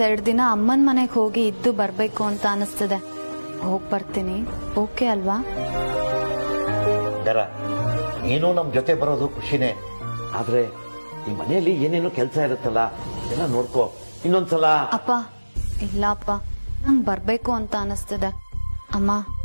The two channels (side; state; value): both; inverted; correlation -1.00